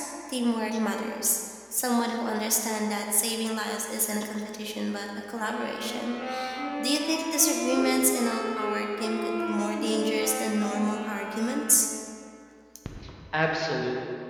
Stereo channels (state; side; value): identical; both; correlation 1.00